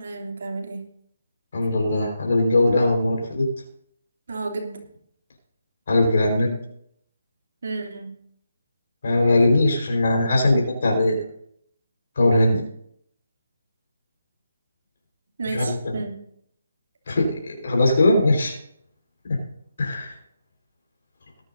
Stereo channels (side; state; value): both; inverted; correlation -0.86